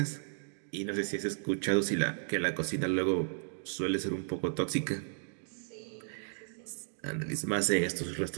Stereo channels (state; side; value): silent; left; digital silence